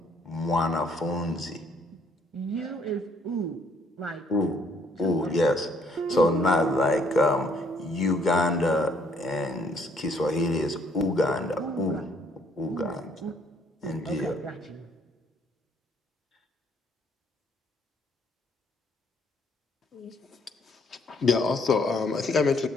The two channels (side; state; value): both; normal; correlation 0.66